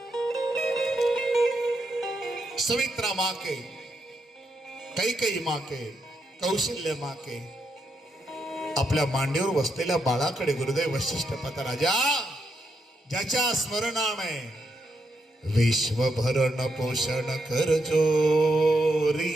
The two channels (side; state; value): both; normal; correlation 0.81